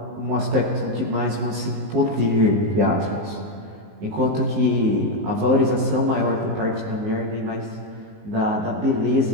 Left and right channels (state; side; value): late; left; 19 ms